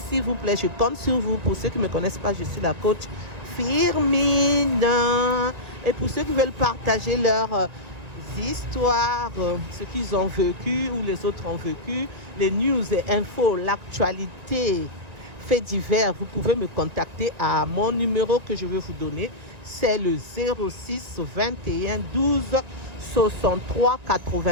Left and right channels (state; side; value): late; left; 1.9 ms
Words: s'il vous plaît. Je compte sur vous. Pour ceux qui ne me connaissent pas, je suis la coach Firmine. Et pour ceux qui veulent partager leurs histoires, ce qu'ils ont vécu ou les autres ont vécu, les news et infos, l'actualité, faits divers, vous pouvez me contacter à mon numéro que je vais vous donner. C'est le 06 21 12 63